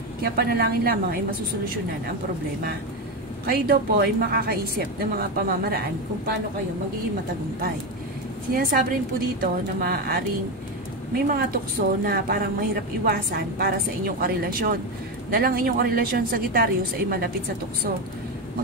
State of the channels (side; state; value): both; normal; correlation 0.13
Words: Kaya panalangin lamang ay masusolusyonan ang problema. Kayo daw po ay makakaisip ng mga pamamaraan kung paano kayo magiging matagumpay. Sinasabi rin po dito na maaaring may mga tukso na parang mahirap iwasan para sa inyong karelasyon. Dahil ang inyong karelasyon Sagittarius ay malapit sa tukso.